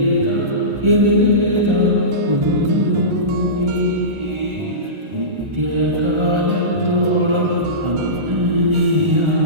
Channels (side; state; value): left; late; 1.4 ms